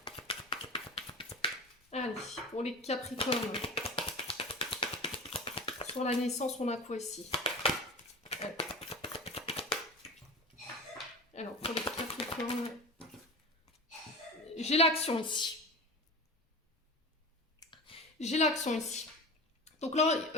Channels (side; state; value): both; normal; correlation 0.31